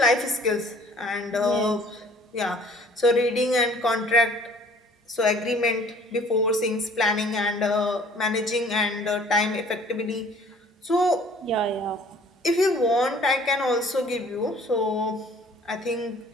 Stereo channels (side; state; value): both; normal; correlation 0.53